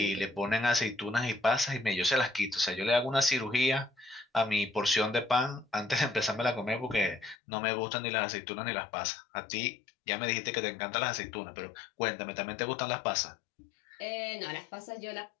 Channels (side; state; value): right; drops out; at 7.4 s